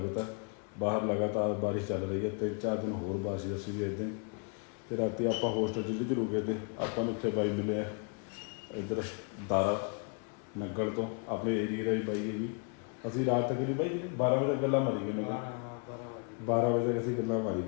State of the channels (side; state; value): right; quieter; 39.3 dB